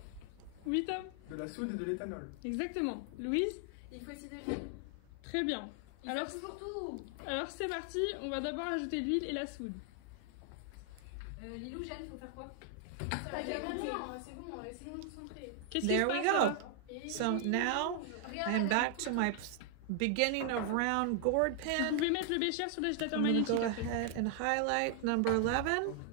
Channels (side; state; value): both; different; correlation 0.00